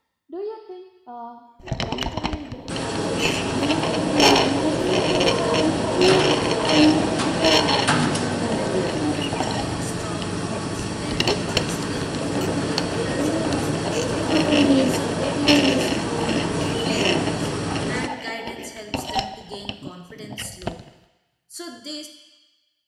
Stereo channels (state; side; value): identical; both; correlation 1.00